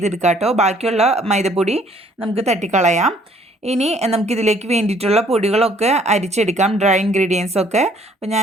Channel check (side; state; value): both; normal; correlation 0.61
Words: കേട്ടോ. ബാക്കിയുള്ള മൈദപ്പൊടി നമുക്ക് തട്ടിക്കളയാം. ഇനി നമുക്കിതിലേക്ക് വേണ്ടിയിട്ടുള്ള പൊടികളൊക്കെ അരിച്ചെടുക്കാം, ഡ്രൈ ഇൻഗ്രീഡിയൻസ് ഒക്കെ. അപ്പോൾ